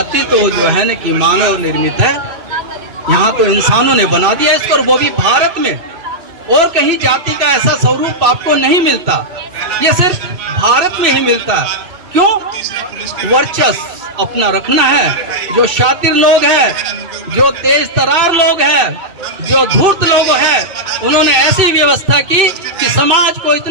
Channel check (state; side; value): late; left; 2.6 ms